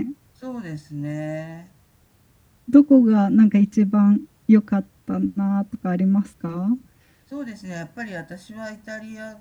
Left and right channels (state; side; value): identical; both; correlation 1.00